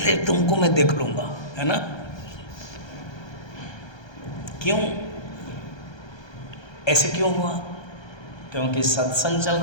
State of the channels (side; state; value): right; late; 1.3 ms